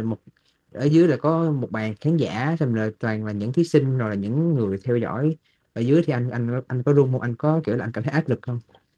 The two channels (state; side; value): identical; both; correlation 1.00